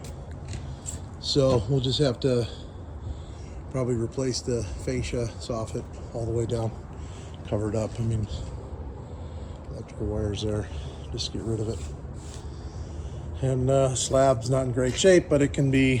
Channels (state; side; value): identical; both; correlation 1.00